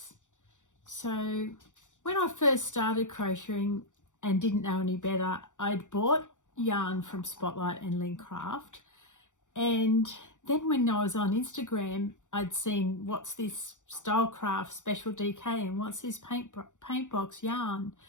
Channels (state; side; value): late; right; 0.86 ms